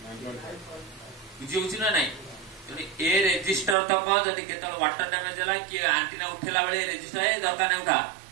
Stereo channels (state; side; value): drops out; left; at 3.8 s